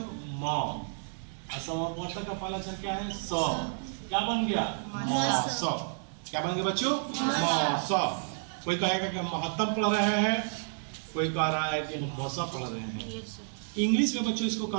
म। और समपवर्तक का पहला अक्षर क्या है? स। क्या बन गया? म स। क्या बन गया बच्चों? म स। कोई कहेगा कि हम महत्तम पढ़ रहे हैं, कोई कह रहा है कि हम मौसा पढ़ रहे हैं। इंग्लिश में बच्चों इसको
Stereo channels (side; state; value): left; silent; 56 dB below the other